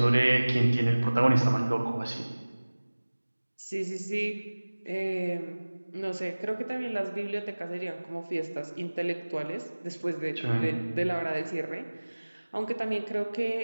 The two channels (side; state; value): both; inverted; correlation -1.00